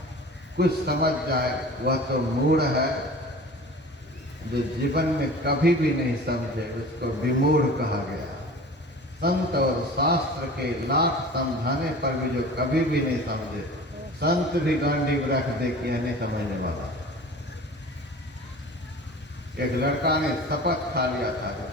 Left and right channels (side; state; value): both; normal; correlation 0.40